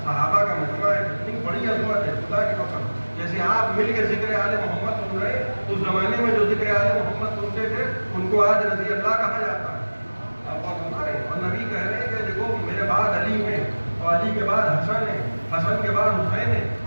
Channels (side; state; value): both; inverted; correlation -1.00